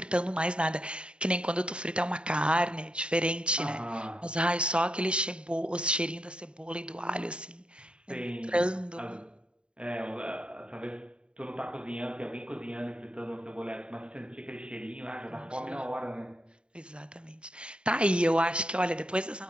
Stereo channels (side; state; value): left; late; 0.052 ms